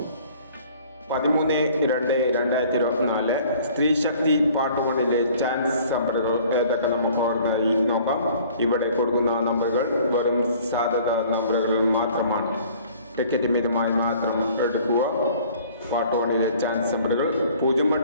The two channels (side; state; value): both; inverted; correlation -0.53